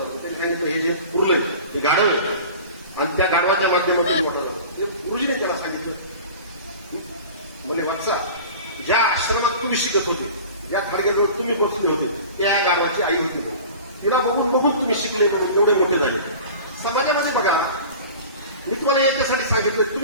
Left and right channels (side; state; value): both; inverted; correlation -0.39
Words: त्यांनी सांगितलं हे जे पुरलंय हे गाढव आहे आणि त्या गाढवाच्या माध्यमातून मोठा झाला. ते गुरुजीने त्याला सांगितलं, म्हणजे वत्सा, ज्या आश्रमात तुम्ही शिकत होते, ज्या थडग्याजवळ तुम्ही बसले होते, त्या गाढवाची आई होती म्हणून. तिला बघून बघून तुम्ही शिकले म्हणून एवढे मोठे झाले. समाजामध्ये बघा, मी तुम्हाला याच्यासाठी सांगितलं,